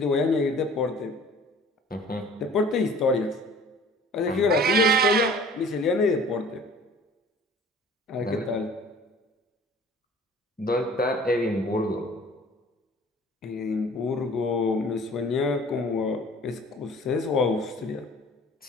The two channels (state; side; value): normal; both; correlation 0.48